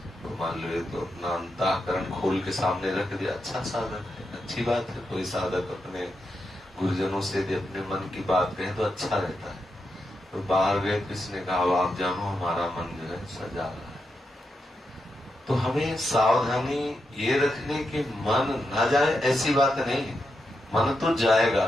तो मान लो ये तो अपना अंतःकरण खोल के सामने रख दिया, अच्छा साधक है, अच्छी बात है। कोई साधक अपने गुरुजनों से यदि अपने मन की बात कहे तो अच्छा रहता है। तो बाहर गए, किसने कहा आप जानो हमारा मन जो है सजा रहा है। तो हमें सावधानी ये रखने की मन न जाए ऐसी बात नहीं है। मन तो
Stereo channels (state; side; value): normal; both; correlation 0.86